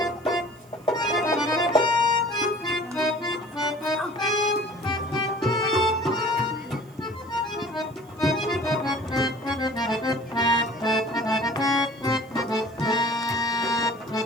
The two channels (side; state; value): right; noise; hiss, 29 dB below the sound